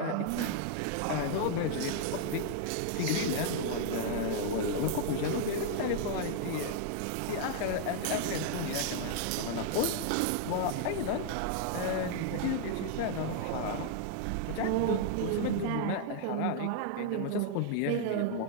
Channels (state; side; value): different; both; correlation 0.00